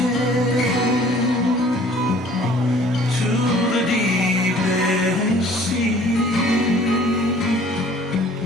to the deepest sea.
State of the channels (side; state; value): both; normal; correlation 0.53